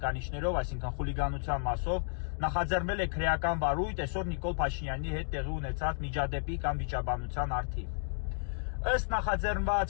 այսինքն խուլիգանության մասով, նախաձեռնել է քրեական վարույթ այսօր Նիկոլ Փաշինյանի հետ տեղի ունեցած միջադեպի կամ վիճաբանության առթիվ։ Ըստ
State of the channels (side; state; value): right; silent; digital silence